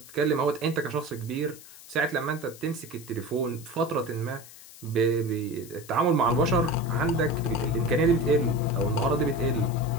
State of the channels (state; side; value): noise; left; hiss, 19 dB below the sound